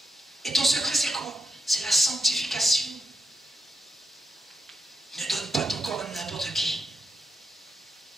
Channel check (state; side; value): normal; both; correlation 0.84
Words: Et ton secret, c'est quoi? C'est la sanctification. Ne donne pas ton corps à n'importe qui.